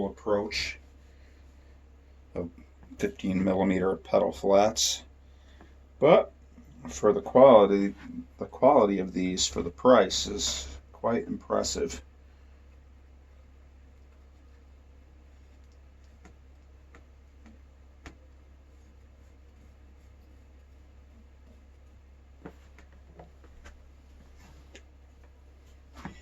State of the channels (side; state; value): both; identical; correlation 1.00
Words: approach of 15mm pedal flats. But for the quality of these for the price is quite impressive.